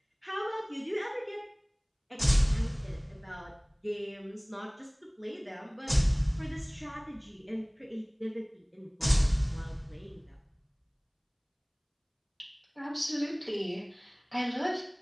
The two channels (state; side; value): identical; both; correlation 1.00